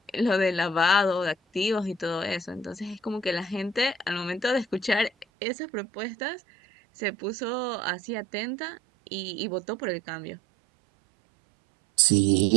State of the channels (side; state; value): left; drops out; at 5.2 s